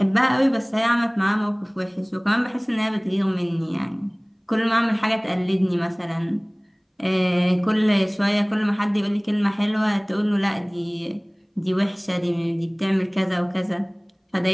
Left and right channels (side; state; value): both; identical; correlation 1.00